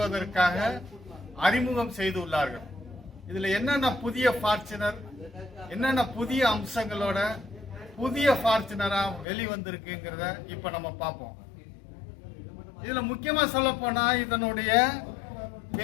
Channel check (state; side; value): drops out; right; at 9.2 s